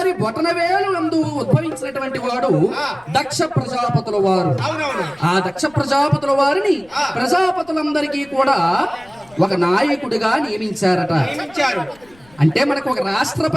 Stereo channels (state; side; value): noise; left; rumble, 29 dB below the sound